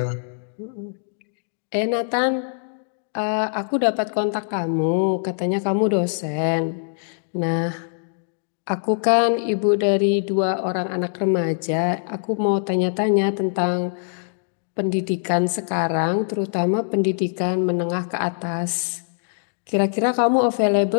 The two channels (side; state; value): right; silent; digital silence